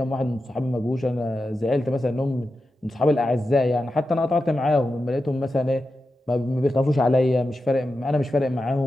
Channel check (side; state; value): both; normal; correlation 0.91